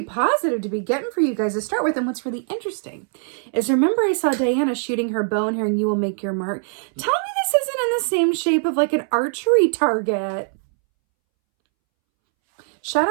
positive to be getting for you guys to start with. And what's really interesting is, remember I saw Diana shooting her bow and hearing you will make your mark. Tell me this isn't in the same shape of like an archery target. Shout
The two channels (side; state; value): left; silent; 64 dB below the other